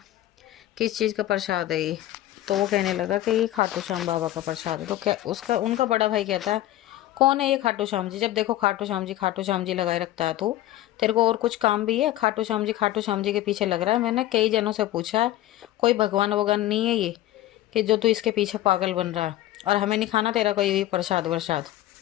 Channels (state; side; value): quieter; right; 14.7 dB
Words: किस चीज़ का प्रसाद है ये? तो वो कहने लगा कि ये खाटू श्याम बाबा का प्रसाद है। तो क्या उनका बड़ा भाई कहता है, कौन है ये खाटू श्याम जी? जब देखो खाटू श्याम जी लगाए रखता है तू। तेरे को और कुछ काम भी है? खाटू श्याम जी के पीछे लग रहा है। मैंने कई जनों से पूछा है, कोई भगवान वगवान नहीं है ये कि जो तू इसके पीछे पागल बन रहा है, और हमें नहीं खाना तेरा कोई भी प्रसाद वरसाद।